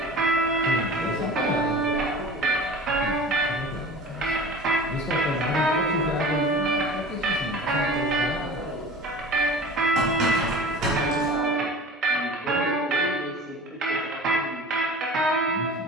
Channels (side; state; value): both; normal; correlation 0.38